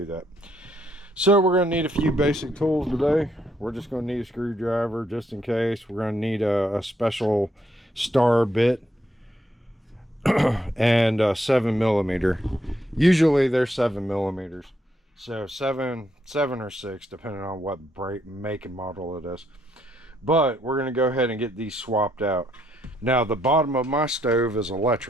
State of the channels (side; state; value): both; normal; correlation 0.74